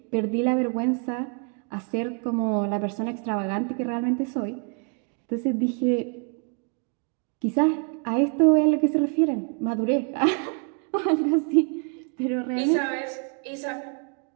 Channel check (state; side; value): quieter; left; 37.8 dB